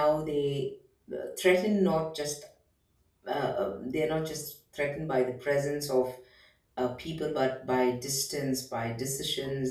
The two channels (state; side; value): identical; both; correlation 1.00